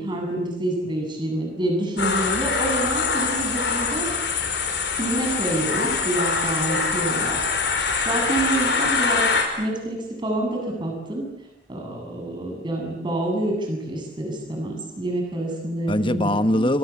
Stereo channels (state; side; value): normal; both; correlation 0.35